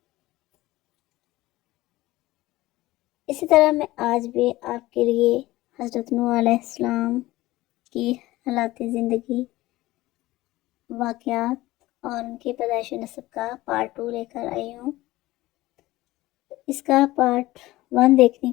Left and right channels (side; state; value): right; quieter; 17.9 dB